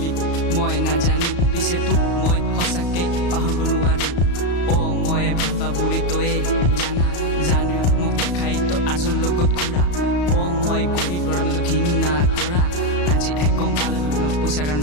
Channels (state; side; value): late; right; 34 ms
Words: মই নাজানো, পিছে তোক মই সঁচাকে পাহৰিব নোৱাৰো। মই ভাল পা বুলি তয়ে জানো মোক দেখাই তই আৰজন লগত ঘূৰা। মই গৰীব ল'ৰা মই তোক ঘৃণা কৰা, আজি গম পালে তুমি পইচাৰ কাৰণে